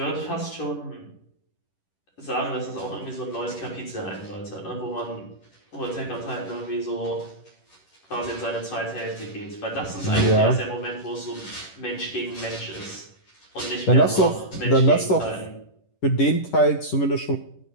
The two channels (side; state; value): right; late; 11 ms